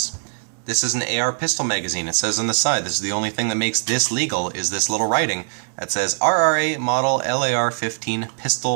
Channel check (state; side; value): silent; left; 65 dB below the other